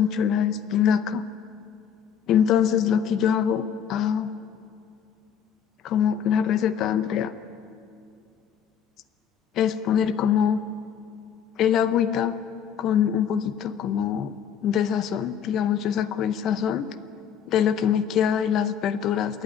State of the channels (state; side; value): quieter; right; 8.3 dB